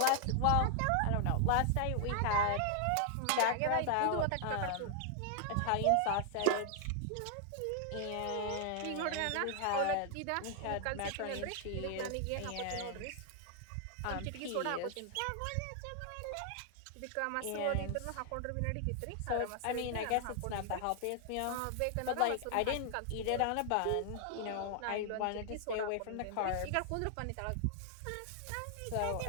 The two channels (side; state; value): both; different; correlation 0.00